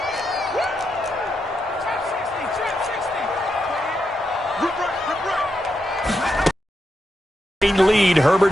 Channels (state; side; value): normal; both; correlation 0.84